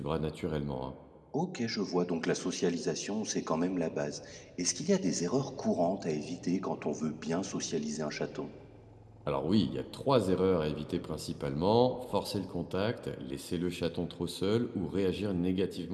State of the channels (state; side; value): identical; both; correlation 1.00